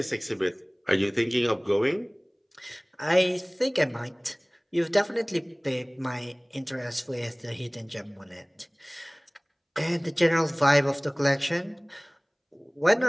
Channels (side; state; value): both; identical; correlation 1.00